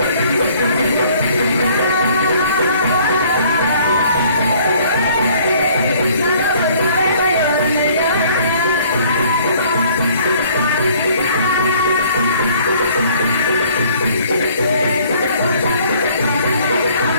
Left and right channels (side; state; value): both; inverted; correlation -0.58